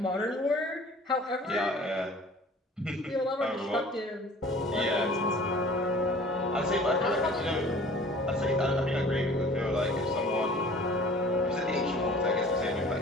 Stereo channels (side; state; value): both; normal; correlation 0.48